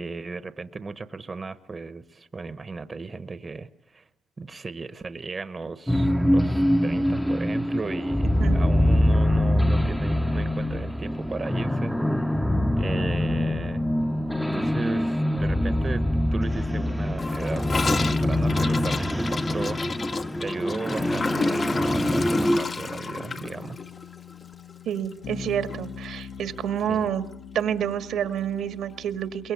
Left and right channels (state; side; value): normal; both; correlation 0.92